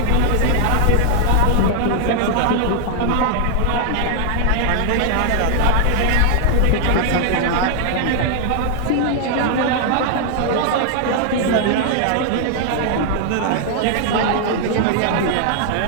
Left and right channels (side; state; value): both; different; correlation 0.00